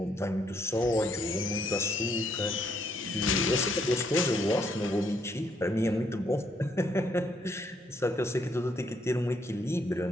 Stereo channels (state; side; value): normal; both; correlation 0.72